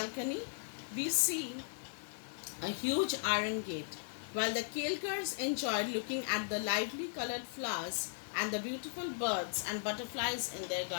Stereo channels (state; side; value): silent; right; digital silence